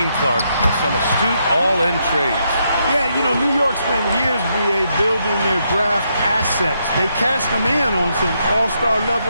Clark, with some astute all-in trades. Yeah, you know, New York spent years, BA, building their draft assets. They cashed them in on some all-star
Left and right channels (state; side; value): inverted; both; correlation -0.78